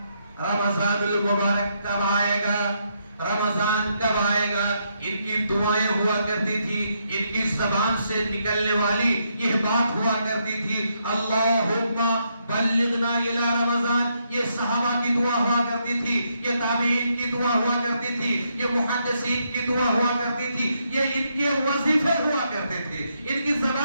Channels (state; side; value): inverted; both; correlation -0.78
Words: رمضان المبارک کب آئے گا، رمضان کب آئے گا۔ ان کی دعائیں ہوا کرتی تھی، ان کی زبان سے نکلنے والی یہ بات ہوا کرتی تھی، اللہم بلغنا الی رمضان۔ یہ صحابہ کی دعا ہوا کرتی تھی، یہ تابعین کی دعا ہوا کرتی تھی، یہ محدثین کی دعا ہوا کرتی تھی، یہ ان کے وظیفے ہوا کرتے تھے، ان کی